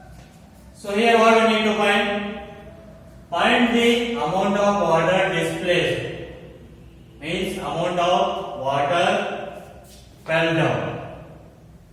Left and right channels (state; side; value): identical; both; correlation 1.00